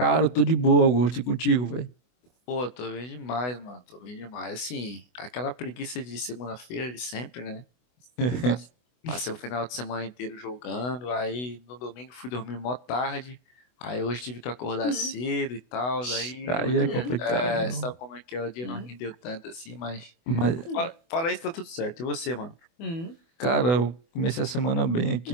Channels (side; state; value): right; late; 24 ms